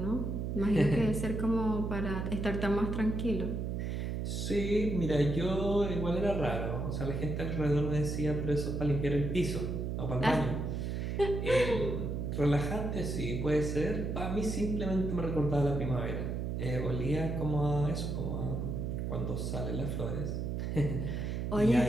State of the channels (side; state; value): right; noise; hum, 2 dB below the sound